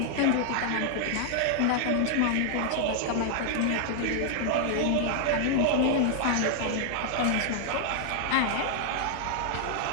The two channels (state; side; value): different; both; correlation 0.00